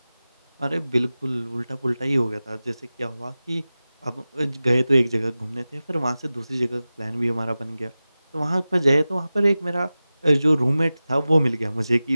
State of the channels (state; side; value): inverted; both; correlation -0.96